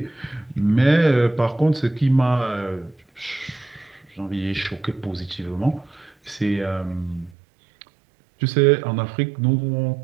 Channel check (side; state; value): left; drops out; at 7.4 s